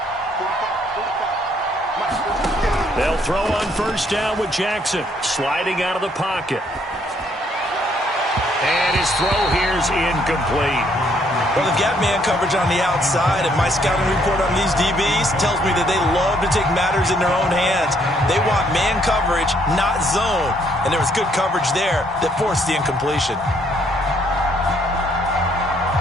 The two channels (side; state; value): both; normal; correlation 0.68